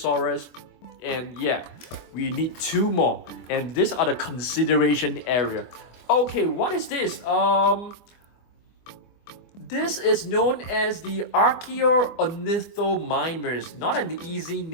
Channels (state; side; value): late; right; 24 ms